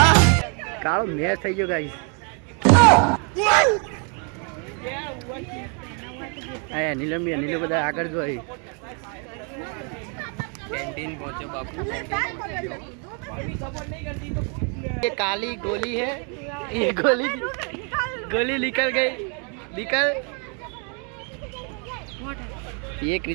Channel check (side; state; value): left; quieter; 38.0 dB